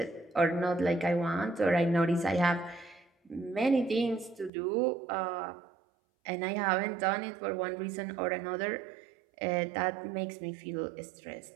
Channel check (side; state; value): left; drops out; at 4.5 s